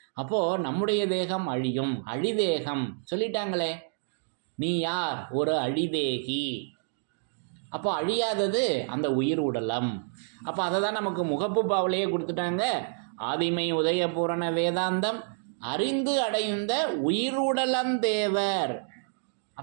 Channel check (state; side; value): silent; left; digital silence